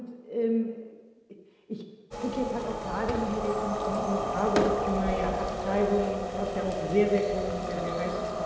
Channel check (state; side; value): identical; both; correlation 1.00